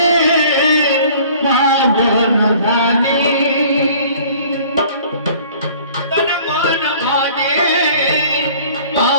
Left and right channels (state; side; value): inverted; both; correlation -0.51